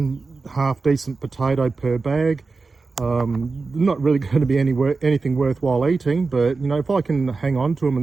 decent potato per bag. Not really going to be anything worthwhile eating, but if I can hang on to them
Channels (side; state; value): left; quieter; 4.1 dB